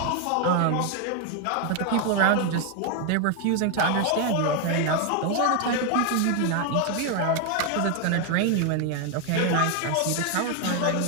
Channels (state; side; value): different; both; correlation 0.01